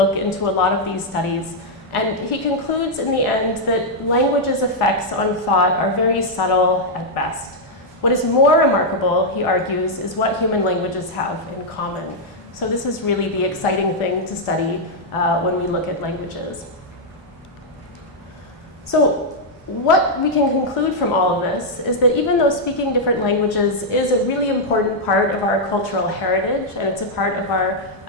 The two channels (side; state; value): both; normal; correlation -0.04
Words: into a lot of these studies. And he concludes in the end that language's effects on thought are very subtle at best. What is more remarkable, he argues, is what human languages have in common. So this is really the exciting thing to study when we look at languages. So what we can conclude from all of this is that even though speaking different languages is a really important part of our cultural heritage, and it's a part of our